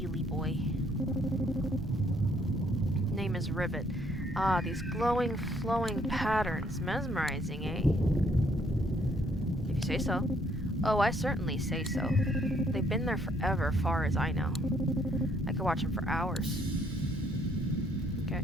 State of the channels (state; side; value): normal; both; correlation 0.67